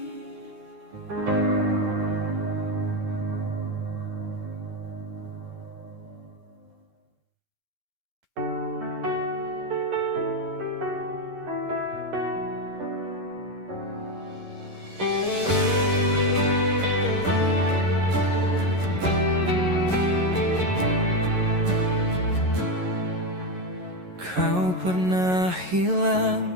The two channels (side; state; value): left; late; 11 ms